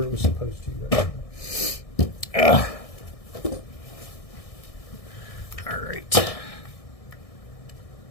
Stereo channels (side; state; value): right; late; 1.6 ms